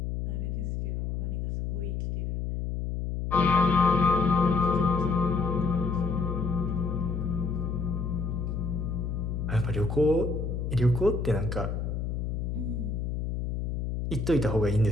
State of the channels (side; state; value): left; noise; hum, 2 dB below the sound